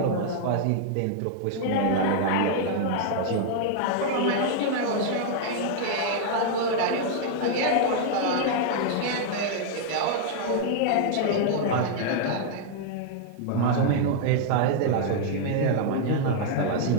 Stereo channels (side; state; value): both; different; correlation -0.01